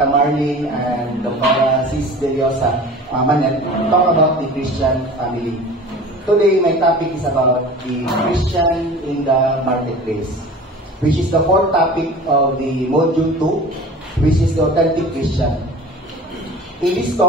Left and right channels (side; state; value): both; normal; correlation 0.39